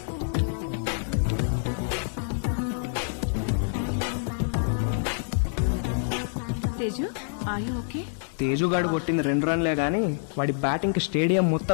తేజు ఆయు ఓకే? తేజుగాడు కొట్టింది 2 రన్లే గానీ వాడి బ్యాటింగ్కి స్టేడియం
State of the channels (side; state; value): right; silent; digital silence